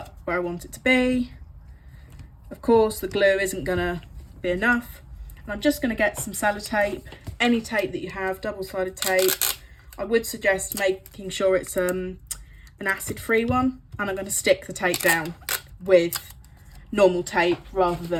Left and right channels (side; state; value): both; identical; correlation 1.00